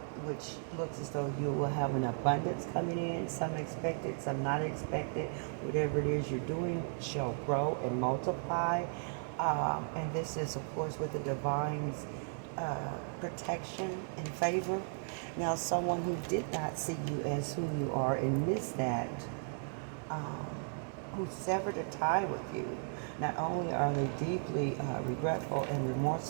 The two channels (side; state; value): left; silent; 54 dB below the other